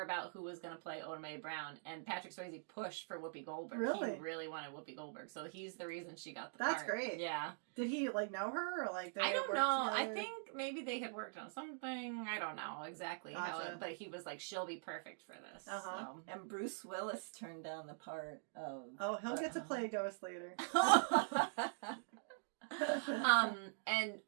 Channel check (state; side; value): silent; left; digital silence